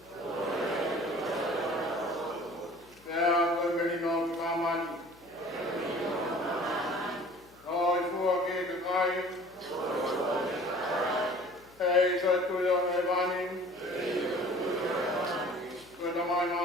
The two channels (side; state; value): left; noise; hum, 28 dB below the sound